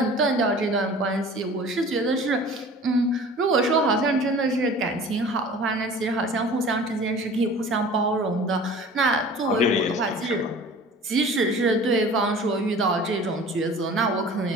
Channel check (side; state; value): both; normal; correlation 0.43